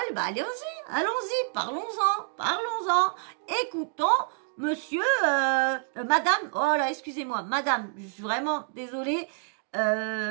bah allons-y, parlons-en. Écoutons monsieur, madame, oh là, excusez-moi, madame, je suis vraiment désolée.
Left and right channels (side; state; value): left; silent; digital silence